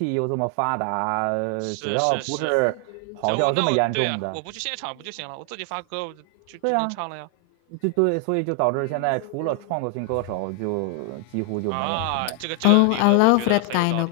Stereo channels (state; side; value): different; both; correlation 0.00